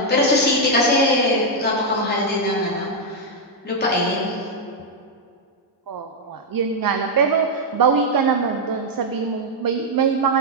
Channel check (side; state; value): both; normal; correlation -0.02